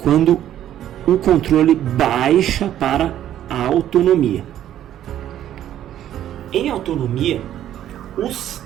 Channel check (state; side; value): quieter; left; 11.6 dB